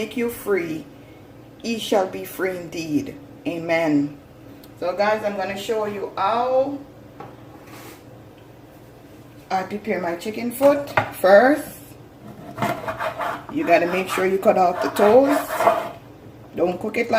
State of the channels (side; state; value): both; identical; correlation 1.00